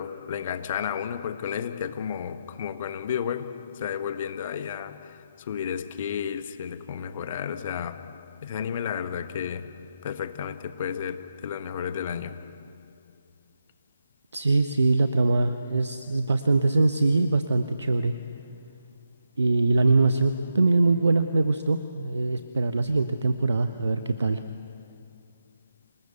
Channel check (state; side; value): inverted; both; correlation -0.86